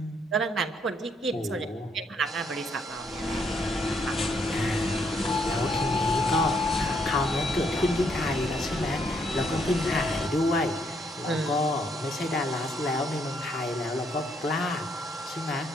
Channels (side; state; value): both; normal; correlation 0.72